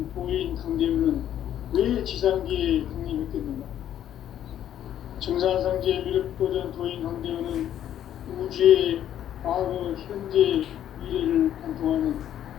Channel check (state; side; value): quieter; right; 10.8 dB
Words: 도인 강대훈은 왜 지상계에 강림했겠는가? 증산상제 미륵도전 도인 강대훈은 우주의 과거, 현재, 미래를 관통하는